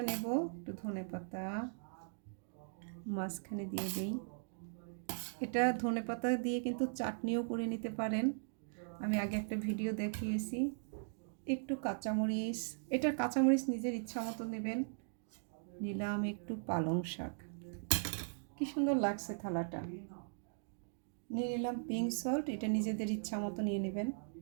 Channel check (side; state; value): left; silent; digital silence